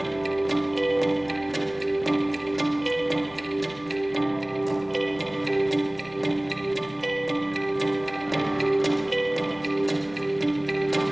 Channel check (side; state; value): right; noise; rumble, 26 dB below the sound